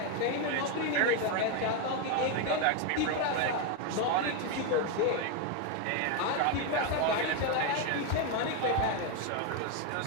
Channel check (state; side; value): different; both; correlation 0.02